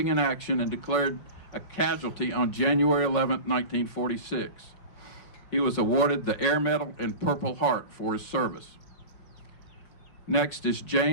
in action and declared a casualty on January 11, 1946. He was awarded the Air Medal and Purple Heart for his service. Next is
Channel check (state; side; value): late; right; 5.4 ms